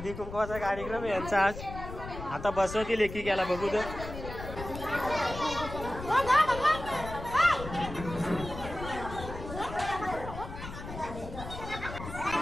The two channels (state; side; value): noise; left; rumble, 10 dB below the sound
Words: कुंकवाचा कार्यक्रम आहे यांचा आज. आता बसवतील एकी गेला बघू तर.